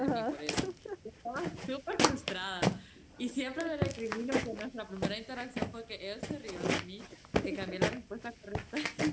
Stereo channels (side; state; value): both; identical; correlation 1.00